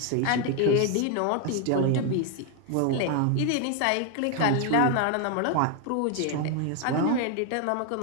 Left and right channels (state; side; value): different; both; correlation 0.01